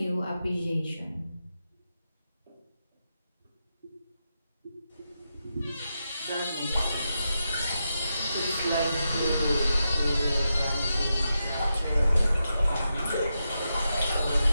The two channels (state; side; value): inverted; both; correlation -0.87